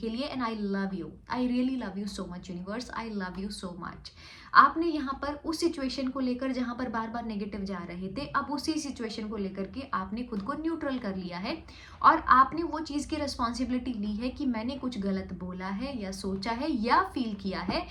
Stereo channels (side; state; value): both; identical; correlation 1.00